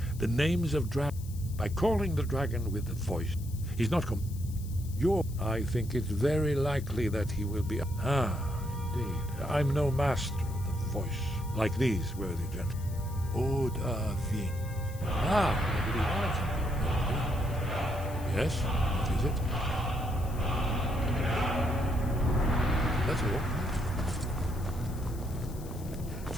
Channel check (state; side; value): noise; left; hiss, 19 dB below the sound